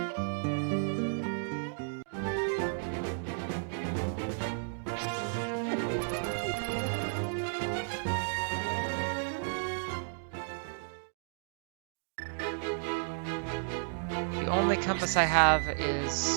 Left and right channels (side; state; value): left; silent; digital silence